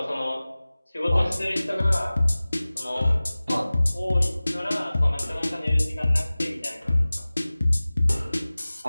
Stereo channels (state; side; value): inverted; both; correlation -0.98